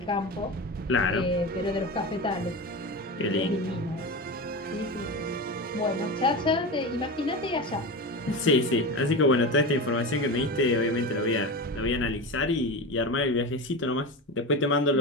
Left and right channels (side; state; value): both; normal; correlation 0.24